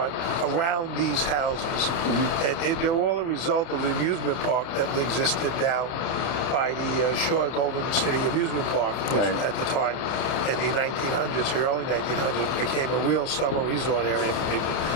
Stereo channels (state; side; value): late; right; 30 ms